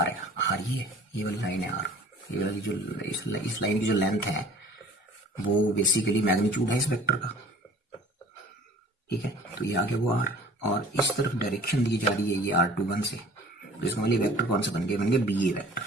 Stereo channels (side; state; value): both; normal; correlation 0.48